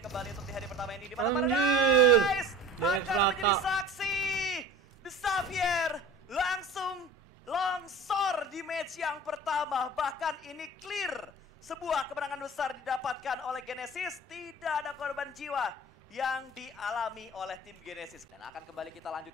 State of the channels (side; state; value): both; normal; correlation 0.39